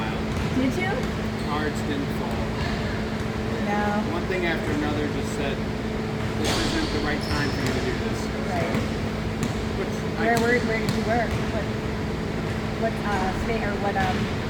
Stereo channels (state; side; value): identical; both; correlation 1.00